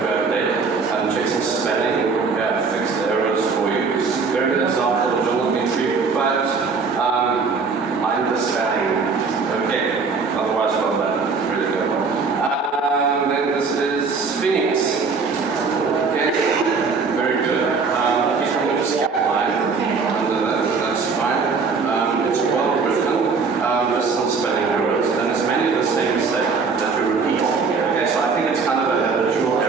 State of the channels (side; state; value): left; quieter; 4.8 dB